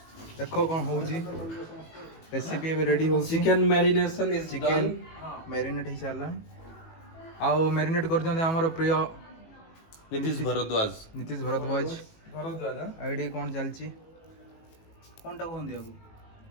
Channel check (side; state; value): right; late; 18 ms